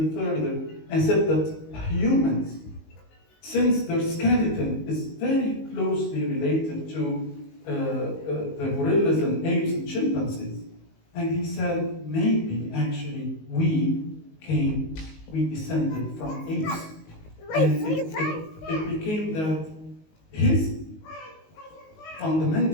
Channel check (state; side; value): late; right; 19 ms